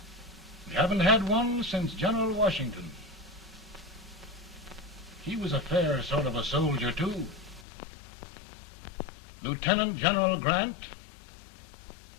We haven't had one since General Washington. He was a fair sort of a soldier, too. Lieutenant General Grant,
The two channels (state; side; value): drops out; right; at 7.7 s